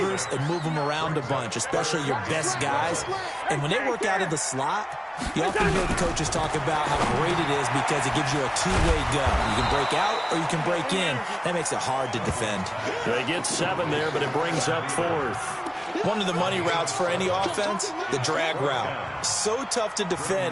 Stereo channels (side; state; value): both; identical; correlation 1.00